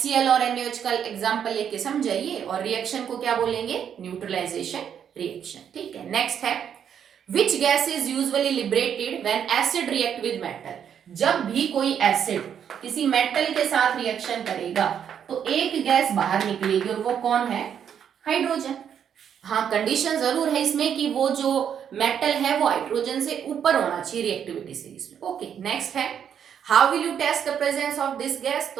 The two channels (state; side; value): quieter; left; 8.5 dB